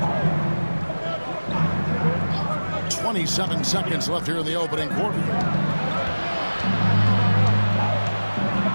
27 seconds left here in the opening quarter.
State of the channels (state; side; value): inverted; both; correlation -1.00